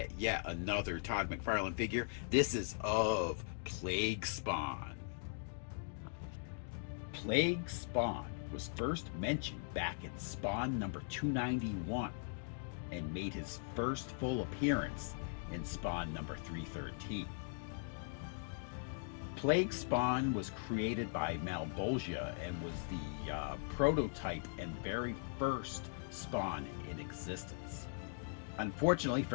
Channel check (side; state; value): right; silent; digital silence